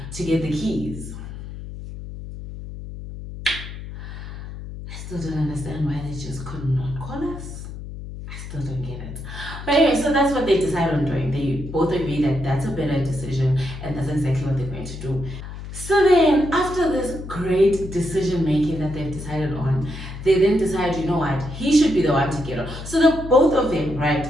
to get the keys. I still don't understand why they just could not call us. Still don't get it. But anyway, so that's what they decide on doing. They both agree that that's a better decision and that's exactly what they're going to do. So then, after this great decision making that they've decided on, they then decide, you know what, he should be the one to get on. So the both of them, right,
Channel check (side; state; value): left; noise; hum, 10 dB below the sound